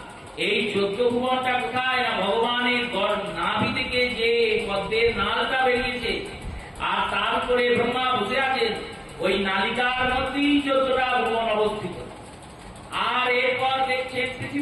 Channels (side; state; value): both; identical; correlation 1.00